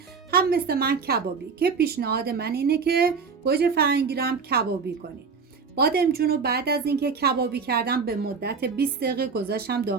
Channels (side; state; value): left; quieter; 5.3 dB